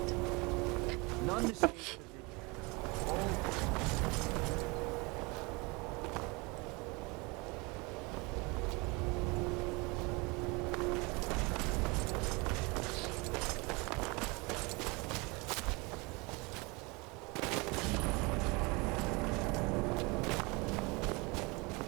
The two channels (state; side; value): quieter; left; 27.0 dB